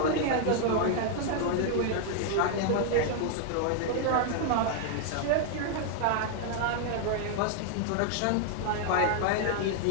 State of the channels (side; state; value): both; different; correlation 0.00